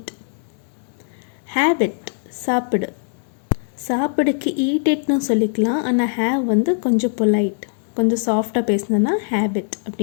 have it, சாப்பிடு. சாப்பிடுக்கு eat itனு சொல்லிக்கலாம். ஆனால் have வந்து கொஞ்சம் பொலைட், கொஞ்சம் சாஃப்டாக பேசினோன்னா have it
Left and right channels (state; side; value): silent; right; 65 dB below the other